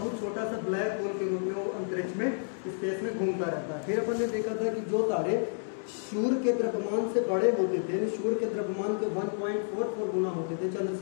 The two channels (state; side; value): silent; right; digital silence